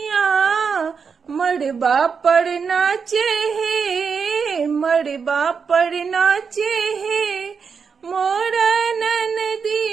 मड़बा पर नाचे है मड़बा पर नाचे है मोर ननदी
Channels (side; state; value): left; quieter; 5.9 dB